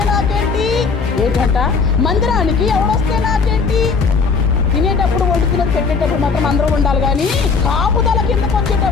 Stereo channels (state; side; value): quieter; right; 5.0 dB